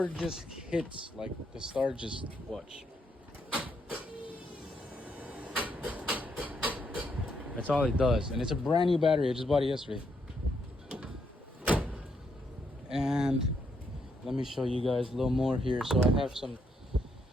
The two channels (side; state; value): both; normal; correlation 0.76